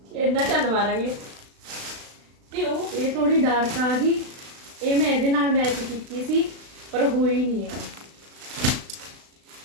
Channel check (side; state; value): left; late; 36 ms